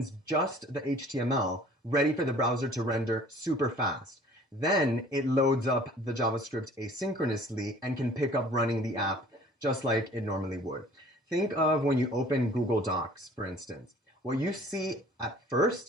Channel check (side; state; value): both; normal; correlation 0.51